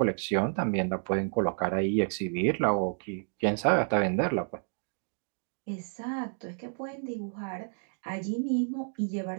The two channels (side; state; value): left; silent; digital silence